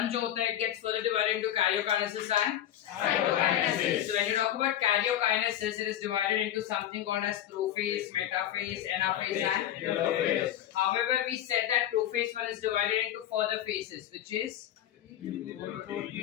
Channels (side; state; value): right; quieter; 11.6 dB